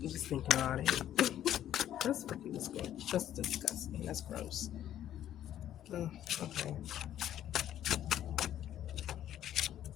just thinking about it. That's fucking disgusting. That's disgusting. That's gross. Ugh, okay.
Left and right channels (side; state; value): right; quieter; 11.4 dB